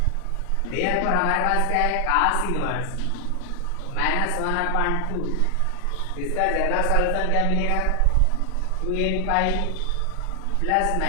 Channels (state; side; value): different; both; correlation 0.00